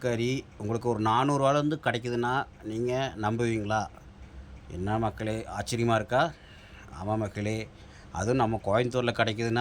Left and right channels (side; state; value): both; identical; correlation 1.00